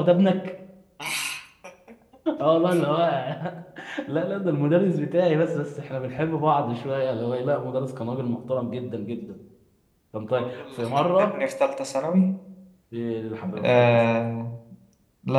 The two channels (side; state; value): both; identical; correlation 1.00